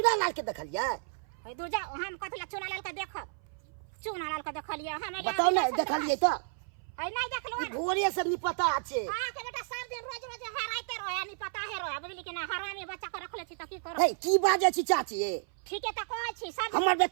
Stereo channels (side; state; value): left; silent; 56 dB below the other